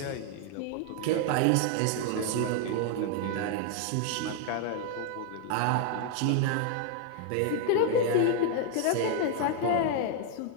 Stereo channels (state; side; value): different; both; correlation 0.00